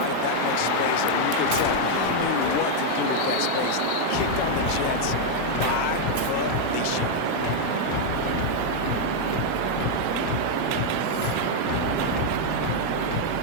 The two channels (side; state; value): both; different; correlation 0.00